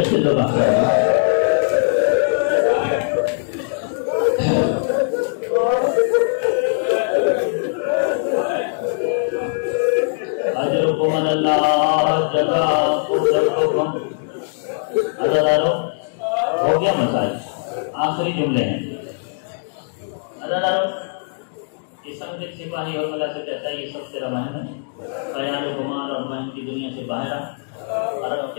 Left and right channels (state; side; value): silent; right; digital silence